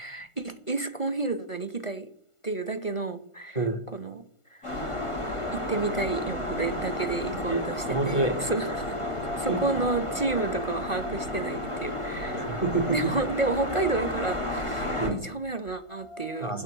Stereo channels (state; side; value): late; right; 1.5 ms